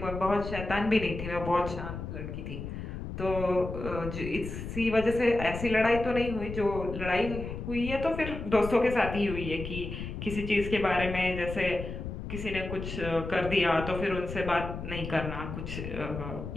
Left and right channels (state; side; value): noise; left; rumble, 7 dB below the sound